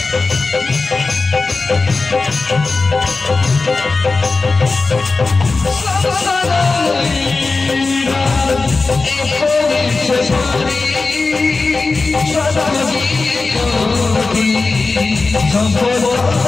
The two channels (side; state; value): right; quieter; 3.8 dB